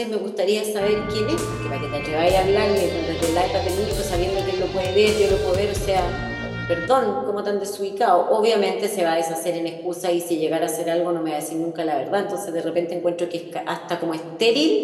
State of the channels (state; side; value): identical; both; correlation 1.00